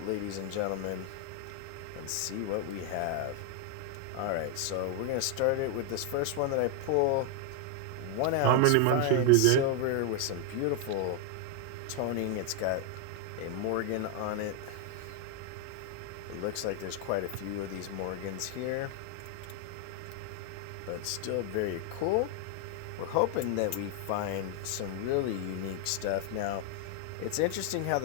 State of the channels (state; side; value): different; both; correlation 0.00